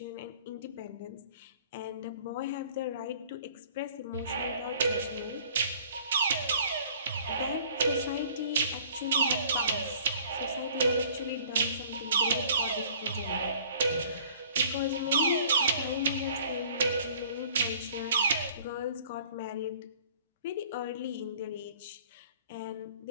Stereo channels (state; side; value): inverted; both; correlation -0.53